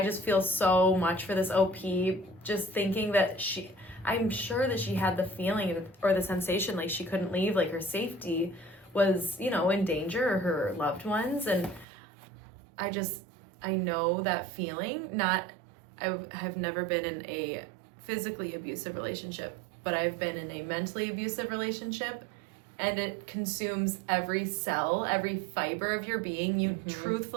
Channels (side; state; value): left; drops out; at 11.9 s